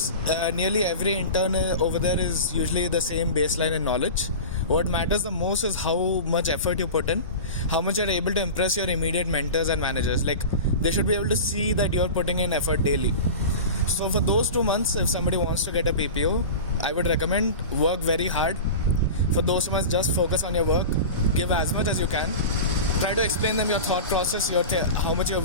nearly every intern over there is usually the same baseline in knowledge. What matters the most is how much effort you put in, how much you're able to impress your immediate mentors and managers. Like, they should be able to see that you're putting in effort daily. So for those 2 months, if somebody wants to get a PPO, I would recommend work very hard. For those months, just focus on your work, give as much as you can, try to explain them your thought process, how much you're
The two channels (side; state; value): both; inverted; correlation -0.31